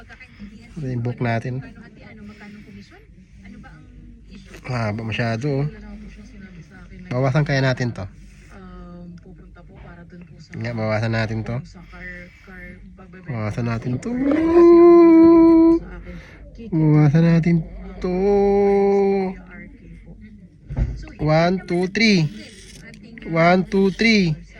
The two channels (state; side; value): identical; both; correlation 1.00